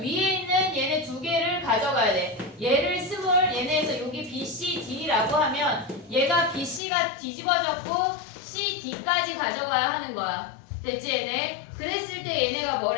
있는 얘네 2개를 가져가야 돼. 얘를 스몰 얘네에서 여기 B, C, D라고 하면 얘가 B, C가 뒤집어졌고 C, D까지 가져가야 하는 거야. 됐지 얘네? 그랬을 때 얘네가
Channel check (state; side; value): drops out; right; at 6.8 s